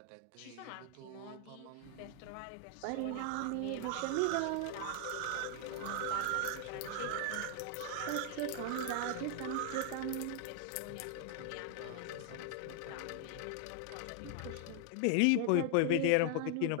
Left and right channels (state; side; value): different; both; correlation 0.00